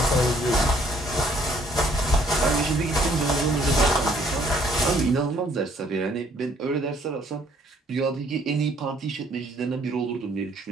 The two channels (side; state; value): both; normal; correlation 0.62